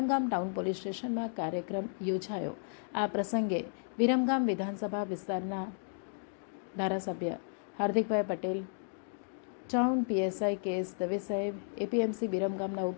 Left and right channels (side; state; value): right; silent; digital silence